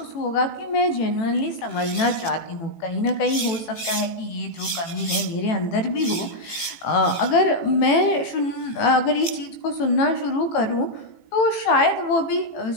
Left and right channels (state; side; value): late; right; 18 ms